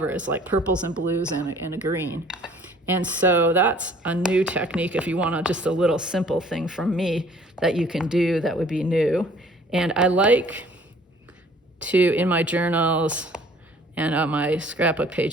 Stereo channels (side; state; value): both; normal; correlation 0.55